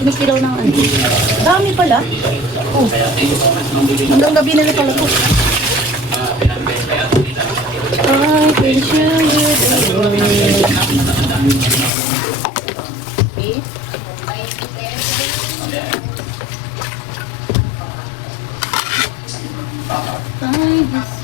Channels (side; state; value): right; drops out; at 11.9 s